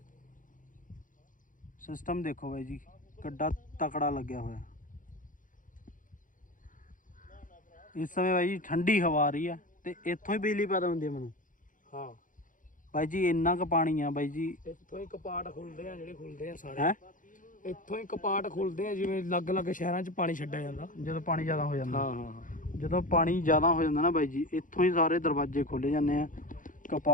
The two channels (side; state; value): right; late; 0.38 ms